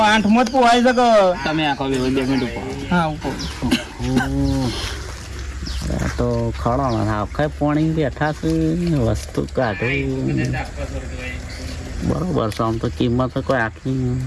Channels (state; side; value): identical; both; correlation 1.00